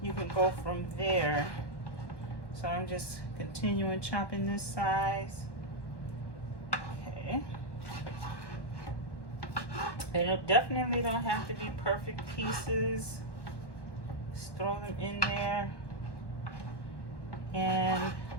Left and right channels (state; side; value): late; right; 1.1 ms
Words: you can go from there. So I'm just continuing chopping this size. Okay. And it definitely don't have to be perfect pieces. Just throw them in there and